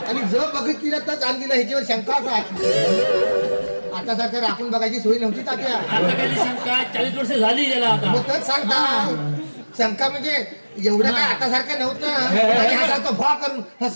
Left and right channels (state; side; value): inverted; both; correlation -1.00